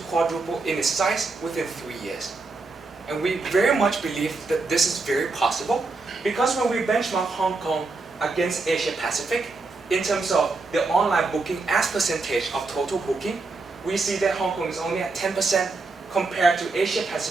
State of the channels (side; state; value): left; quieter; 3.7 dB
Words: quadruple in its size within 3 years. And we very much believe that this is very possible because when we benchmark Hong Kong against Asia Pacific, in terms of the online booking as percentage of total booking, we see that Hong Kong is only at 10% compared to Asia